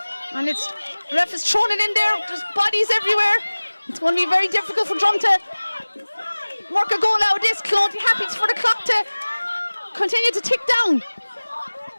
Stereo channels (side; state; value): both; inverted; correlation -1.00